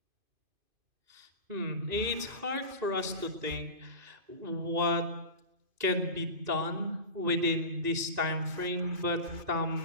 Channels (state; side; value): late; left; 2.5 ms